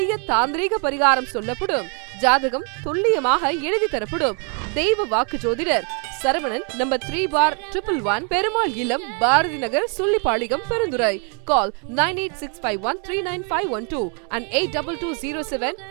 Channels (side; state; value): left; quieter; 38.8 dB